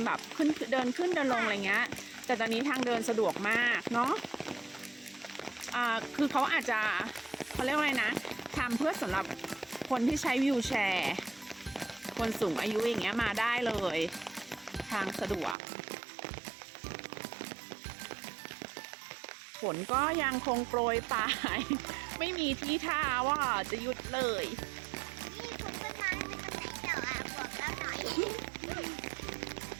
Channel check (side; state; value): left; drops out; at 15.6 s